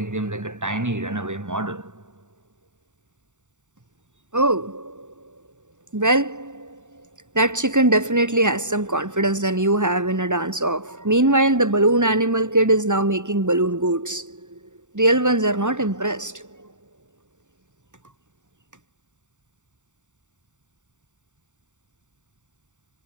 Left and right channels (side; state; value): left; late; 0.85 ms